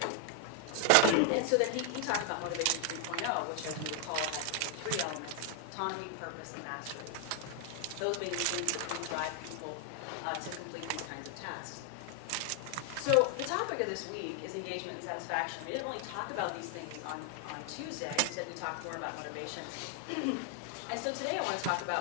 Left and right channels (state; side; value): different; both; correlation 0.00